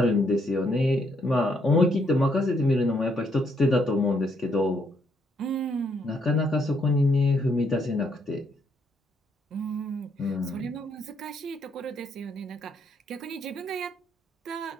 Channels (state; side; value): normal; both; correlation 0.73